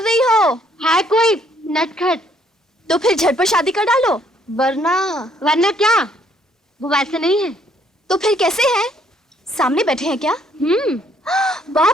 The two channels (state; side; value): normal; both; correlation 0.66